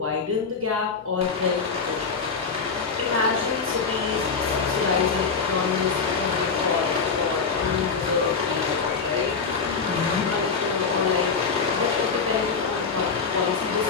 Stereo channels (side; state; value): right; quieter; 5.2 dB